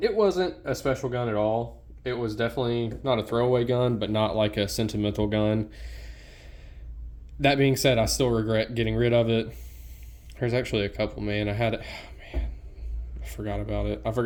wasn't a special gun at all. It was definitely not a throwaway gun, but not like a sentimental gun. That being said, I still regret getting rid of it. There's actually a couple, man. I forgot about it. I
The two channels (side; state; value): both; identical; correlation 1.00